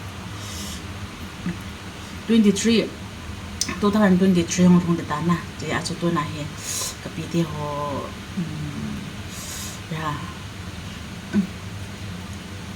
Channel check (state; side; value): identical; both; correlation 1.00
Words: 23 2023 hong thong de ta na. Ji a chu tu na he. Kapi ti ho ya.